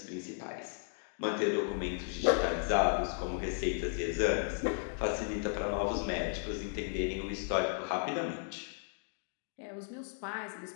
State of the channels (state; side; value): silent; right; 54 dB below the other